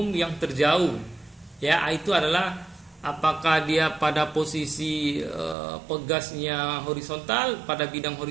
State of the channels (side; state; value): left; drops out; at 5.6 s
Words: yang terjauh, ya. Itu adalah apakah dia pada posisi pegasnya horizontal, pada bidang